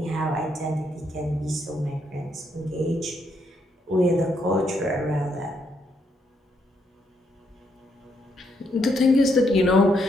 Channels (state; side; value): normal; both; correlation 0.76